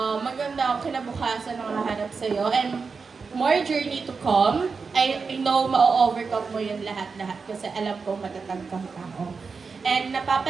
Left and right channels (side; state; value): left; quieter; 5.0 dB